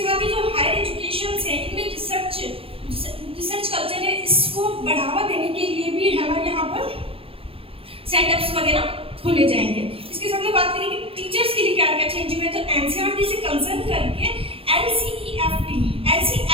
साथ ही जो हायर एजुकेशन है इनमें रिसर्च कल्चर है, इसको बढ़ावा देने के लिए भी है ना यहाँ पर सेटअप्स वगैरह खोले जाएंगे। इसके साथ में बात करें कि टीचर्स के लिए क्या क्या चेंज हुए, तो एनसीईआरटी से कंसर्न करके एनसीईएफटी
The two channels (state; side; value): late; left; 0.27 ms